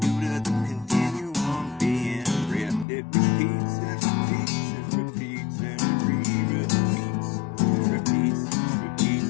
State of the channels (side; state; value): right; drops out; at 2.9 s